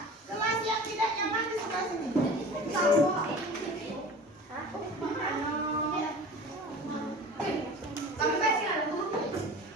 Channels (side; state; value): both; normal; correlation 0.39